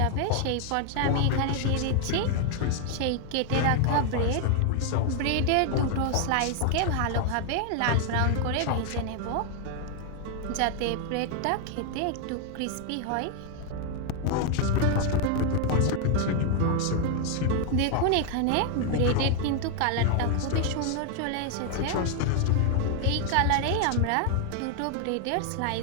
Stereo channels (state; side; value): different; both; correlation 0.00